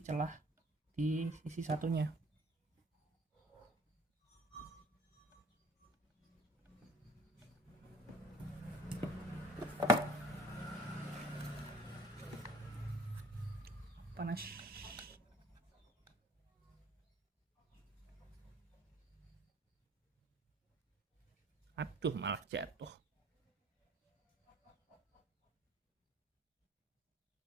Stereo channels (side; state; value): both; normal; correlation 0.51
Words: celah di sisi satunya. Panas. Aduh, malah jatuh.